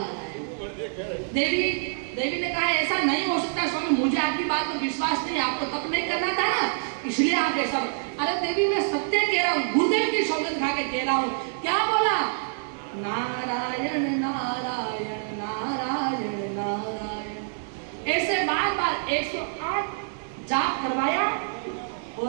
देवी ने कहा ऐसा नहीं हो सकता स्वामी, मुझे आपकी बात पर विश्वास नहीं, आपको तप नहीं करना था ना, इसलिए आप ऐसा। अरे देवी मैं सत्य कह रहा हूँ, गुरुदेव की सौगंध खा के कह रहा हूँ। क्या बोला? नारायण नारायण नारायण नारायण। ऐसे बार बार 108 जाप करवाया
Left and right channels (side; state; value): left; silent; digital silence